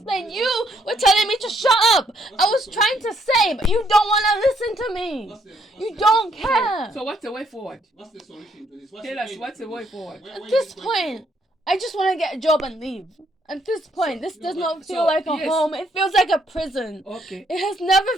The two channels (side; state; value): both; normal; correlation 0.70